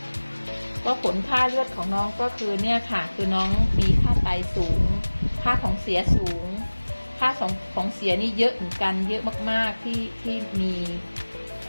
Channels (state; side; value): inverted; both; correlation -1.00